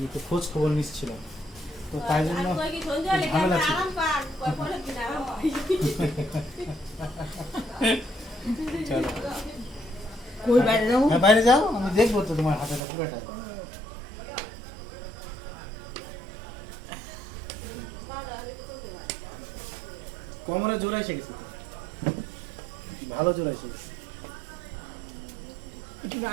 একটু খোঁজ খবর নিচ্ছিলাম, তো তাই জন্য ঝামেলা ছিল। চলো কই বাইরে যাও? হ্যাঁ বাইরে যাও, আমি দেখবো তো তোমার হাতেটা পুরাটাই। কোমরে জোর এসে গেছে তো, ভালো জোর এসে গেছে। একটু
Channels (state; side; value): drops out; left; at 12.8 s